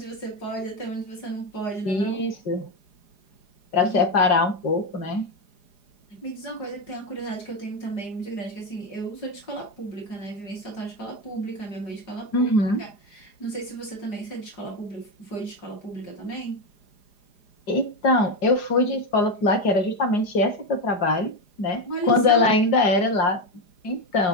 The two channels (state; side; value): late; right; 4.9 ms